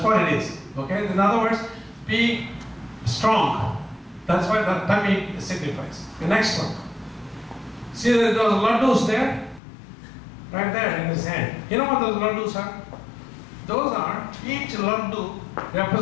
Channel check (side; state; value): right; drops out; at 9.6 s